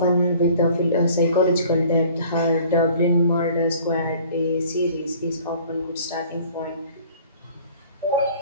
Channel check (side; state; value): both; inverted; correlation -0.51